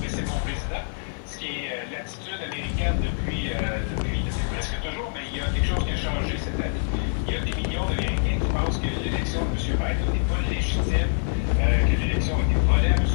mais c'est mon président, ce qui est l'attitude américaine depuis presque toujours, mais il y a quelque chose qui a changé cette année. Il y a des millions d'Américains qui pensent que l'élection de M. Biden n'est pas légitime, que l'élection a été volée à M.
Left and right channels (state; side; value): silent; right; 61 dB below the other